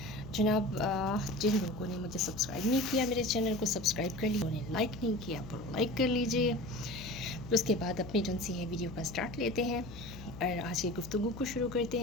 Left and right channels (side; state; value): left; noise; hum, 13 dB below the sound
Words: जनाब, जिन लोगों ने मुझे सब्सक्राइब नहीं किया, मेरे चैनल को सब्सक्राइब कर लिया, उन्हें लाइक नहीं किया तो लाइक कर लीजिए। फिर उसके बाद अपनी जो सी है वीडियो का स्टार्ट लेते हैं और आज की गुफ्तगू को शुरू करते